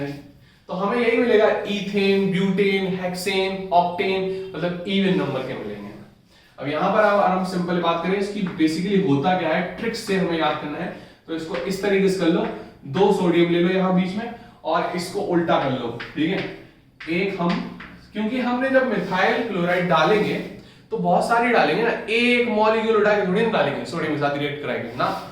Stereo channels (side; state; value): both; identical; correlation 1.00